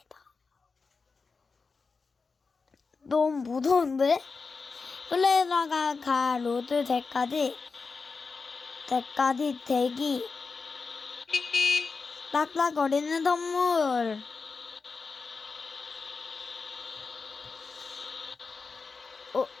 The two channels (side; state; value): right; quieter; 4.6 dB